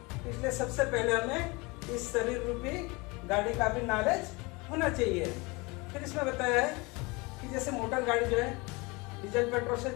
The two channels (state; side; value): quieter; right; 25.9 dB